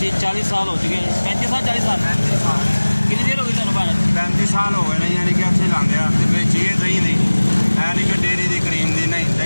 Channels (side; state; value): both; inverted; correlation -1.00